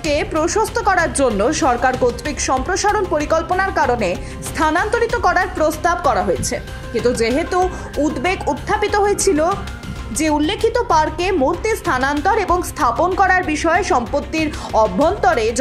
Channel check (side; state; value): both; identical; correlation 1.00